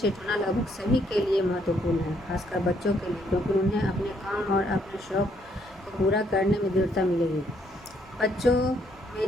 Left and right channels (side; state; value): both; normal; correlation 0.70